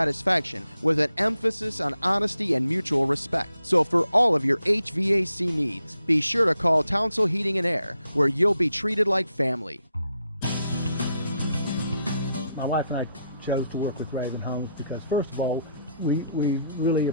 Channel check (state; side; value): inverted; both; correlation -0.79